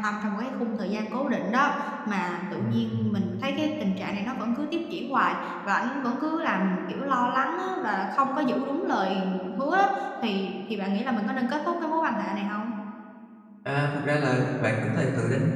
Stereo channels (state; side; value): identical; both; correlation 1.00